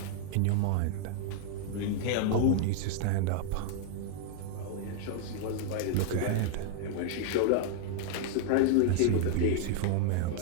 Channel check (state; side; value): different; both; correlation 0.00